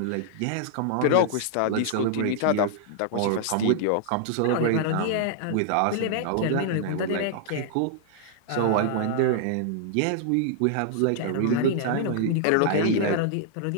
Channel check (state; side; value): different; both; correlation -0.01